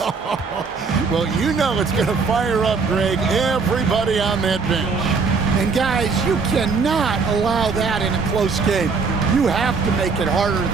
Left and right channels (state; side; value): quieter; left; 4.9 dB